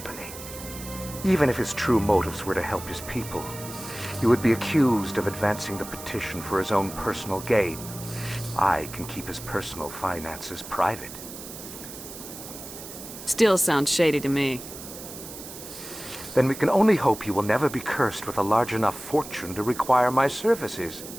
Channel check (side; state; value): right; noise; hiss, 12 dB below the sound